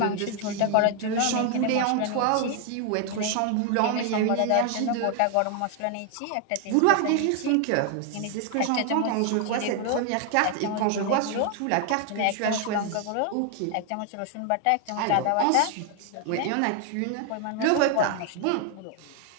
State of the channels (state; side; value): different; both; correlation 0.00